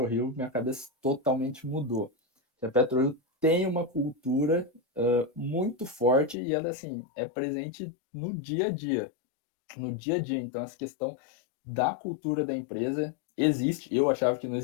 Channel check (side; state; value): right; drops out; at 6.4 s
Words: minha cabeça totalmente mudou. A PetroRio tem uma cultura muito forte e ela, assim, é presente no dia a dia. No dia a dia. Então, essa questão da cultura da empresa existe. Eu achava que não